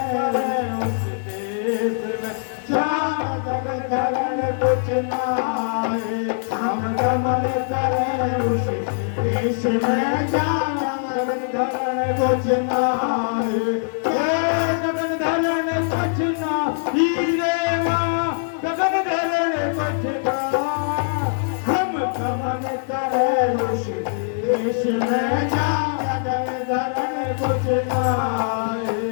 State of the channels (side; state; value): right; silent; digital silence